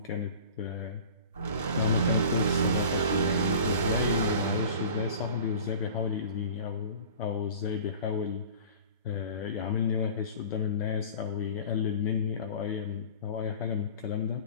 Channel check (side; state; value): both; inverted; correlation -0.41